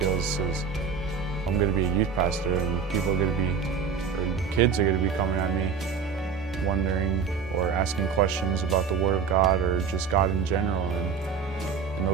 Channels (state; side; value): quieter; left; 6.2 dB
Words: As I'm going to be a youth pastor, and kids are going to be coming at me wondering or asking questions about the Word of God or just God in general. And in